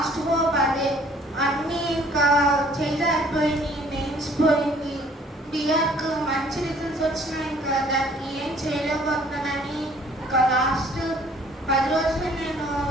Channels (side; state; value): both; normal; correlation 0.57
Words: హోప్ అదే. అన్నీ ఇంకా చేయలేకపోయింది, మెయిన్స్ పోయింది, బిఆర్కు మంచి రిజల్ట్స్ వచ్చినా ఇంకా దానికి ఏం చేయలేకపోతున్నానని ఇంకా లాస్ట్ 10 రోజులు నేను